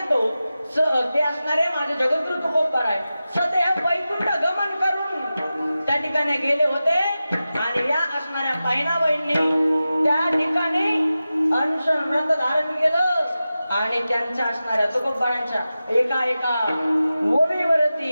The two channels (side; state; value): both; inverted; correlation -0.94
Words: ते असणारे माझे जगद्गुरु तुकोबार आहे. सदैव वैकुंठ गमन करून त्या ठिकाणी गेले होते आणि या असणाऱ्या बहिणाबाईंनी त्या ठिकाणी अनशन व्रत धारण केलं आणि त्यांच्या असणाऱ्या तुकोबारांच्या एका एका